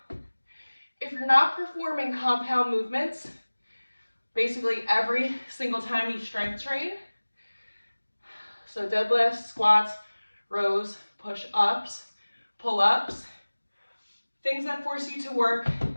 if you're not performing compound movements, basically every single time you strength train, so deadlifts, squats, rows, push-ups, pull-ups, things that force you to work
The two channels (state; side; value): inverted; both; correlation -1.00